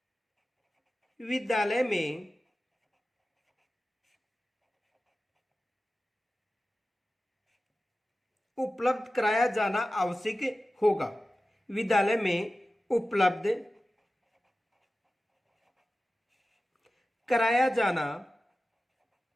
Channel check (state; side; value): normal; both; correlation 0.95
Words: विद्यालय में उपलब्ध कराया जाना आवश्यक होगा। विद्यालय में उपलब्ध कराया जाना